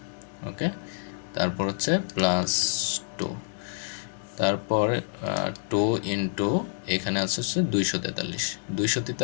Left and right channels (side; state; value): right; silent; 60 dB below the other